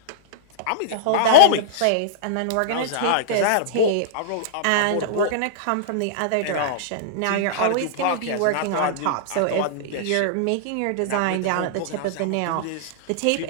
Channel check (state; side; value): different; both; correlation -0.02